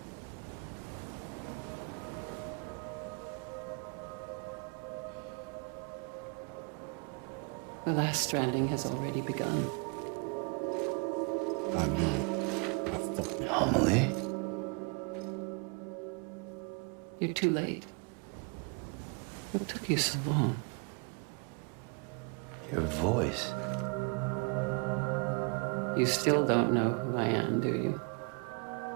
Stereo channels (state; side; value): quieter; left; 33.2 dB